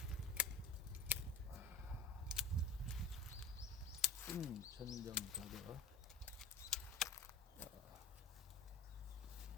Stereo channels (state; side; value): quieter; right; 3.4 dB